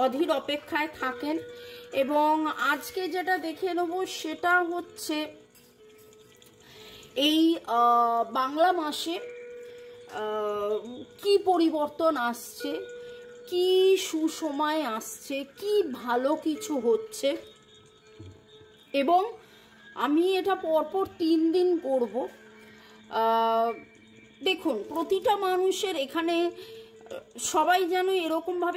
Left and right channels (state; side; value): identical; both; correlation 1.00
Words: অধীর অপেক্ষায় থাকেন। এবং আজকে যেটা দেখে নেব সেটা হচ্ছে এই বাংলা মাসে কি পরিবর্তন আসছে, কি সুসময় আসছে, কি ভালো কিছু হচ্ছে। এবং আমি এটা পরপর 3 দিন করব। দেখুন, প্রতিটা মানুষের এখানে সবাই যেন